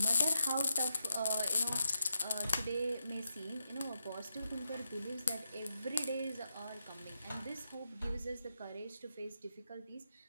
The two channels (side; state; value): both; inverted; correlation -0.86